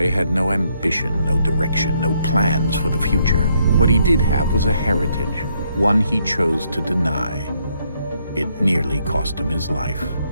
had no ambition, no direction, no plans for the future. What he did have was a heritage, one he chose to deny. It nearly cost him his life.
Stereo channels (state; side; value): inverted; both; correlation -0.73